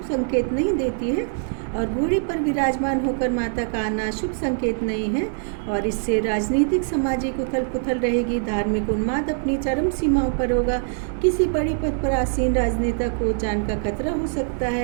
संकेत नहीं देती है और घोड़े पर विराजमान होकर माता का आना शुभ संकेत नहीं है। और इससे राजनीतिक, सामाजिक उथल पुथल रहेगी, धार्मिक उन्माद अपनी चरम सीमाओं पर होगा, किसी बड़े पद पर आसीन राजनेता को जान का खतरा हो सकता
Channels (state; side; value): silent; left; digital silence